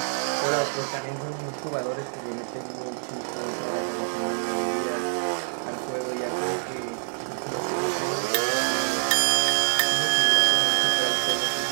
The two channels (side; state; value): left; silent; digital silence